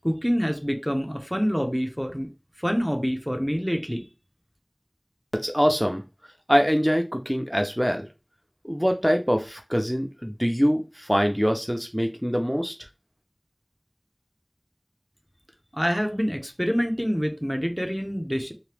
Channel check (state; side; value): identical; both; correlation 1.00